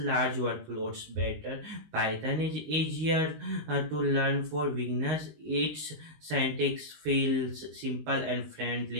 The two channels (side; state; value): left; late; 19 ms